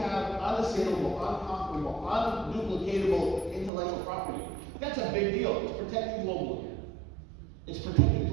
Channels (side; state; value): left; drops out; at 3.7 s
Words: unassailable, unconquerable, unduplicatable intellectual property. That's a big deal. It's protected globally. It's protected